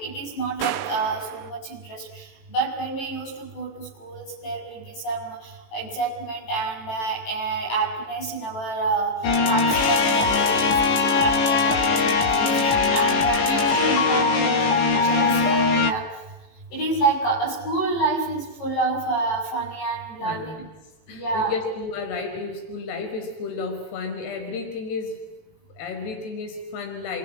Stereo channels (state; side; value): late; right; 19 ms